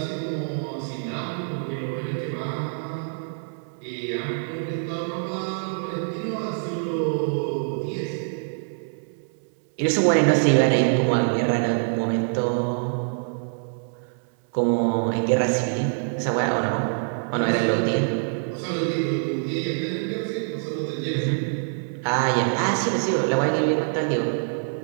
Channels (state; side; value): silent; left; 62 dB below the other